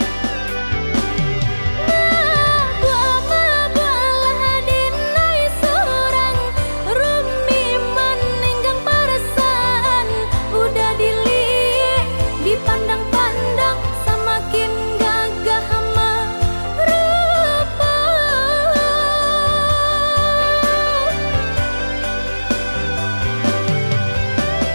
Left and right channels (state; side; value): inverted; both; correlation -1.00